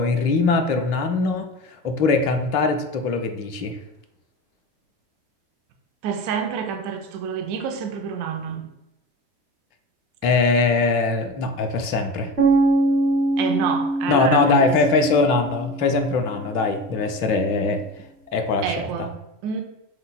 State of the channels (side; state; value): left; late; 3.1 ms